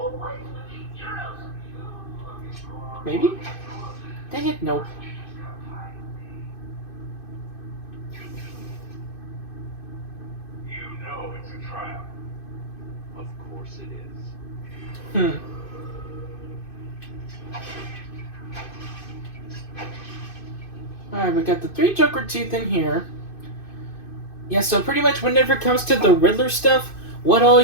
Maybe? Dang it, nope. You know it's a trap. Of course it is. Alright, we got the 3 Joker teeth in here. Yeah, so pretty much whenever it comes to the Riddler stuff, what all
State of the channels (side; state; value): right; late; 2.5 ms